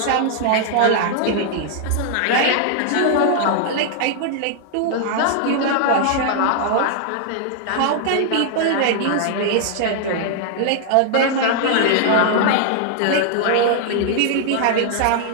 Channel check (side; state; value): both; different; correlation -0.01